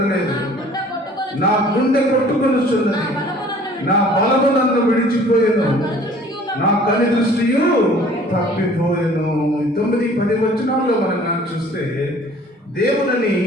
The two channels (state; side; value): normal; both; correlation 0.51